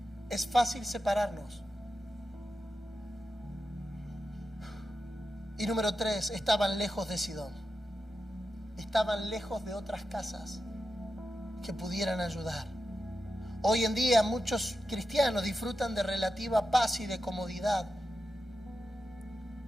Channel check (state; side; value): normal; both; correlation 0.90